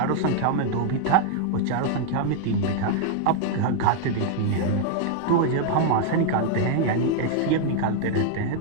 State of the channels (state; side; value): different; both; correlation 0.00